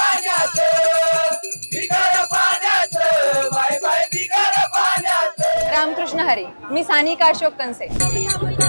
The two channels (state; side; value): inverted; both; correlation -1.00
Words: बिगर पाण्याचं बाय बाय बिगर पाण्याचं. रामकृष्ण हरी. मी सानिका अशोक कंसे.